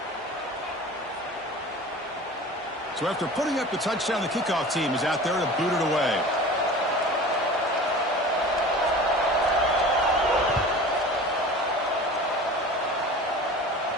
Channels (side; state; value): both; normal; correlation 0.38